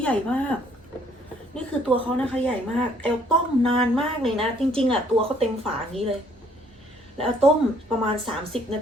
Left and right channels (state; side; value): normal; both; correlation 0.63